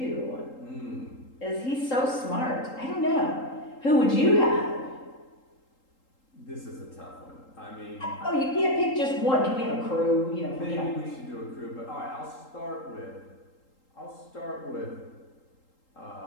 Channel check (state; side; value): late; right; 3.8 ms